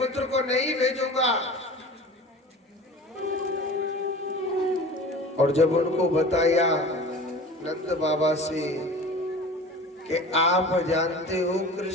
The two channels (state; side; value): normal; both; correlation 0.38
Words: को नहीं भेजूंगा। और जब उनको बताया नंद बाबा से कि आप जानते हो